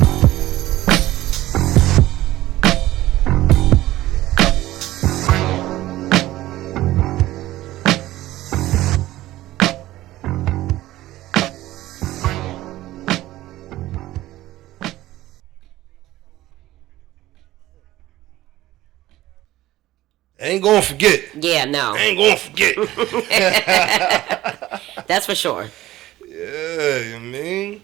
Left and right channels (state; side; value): quieter; left; 15.9 dB